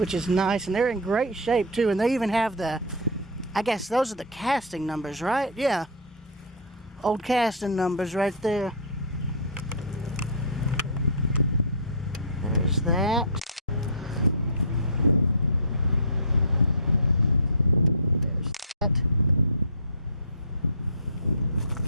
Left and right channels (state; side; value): normal; both; correlation -0.17